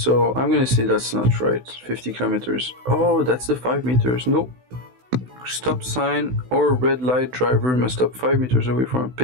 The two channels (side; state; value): left; late; 16 ms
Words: I'm gonna say that's not right. 50 kilometers. Oh, that's the 5 meters. Nope. Stop sign or red light, driver must stop 5 meters away from a